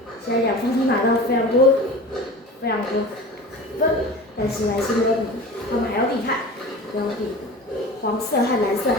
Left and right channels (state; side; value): normal; both; correlation 0.35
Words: 现在两方都拿到非常多分，但是还是没有比他们还要厉害，没有比黄色和蓝色